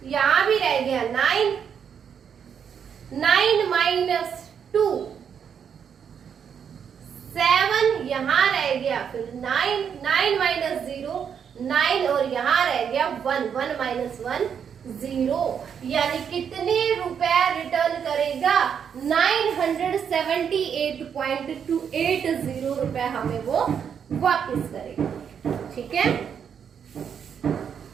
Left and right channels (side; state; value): left; quieter; 7.6 dB